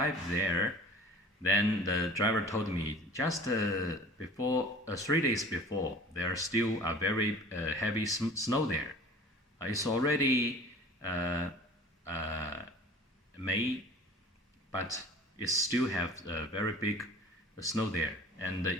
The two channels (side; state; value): both; normal; correlation 0.44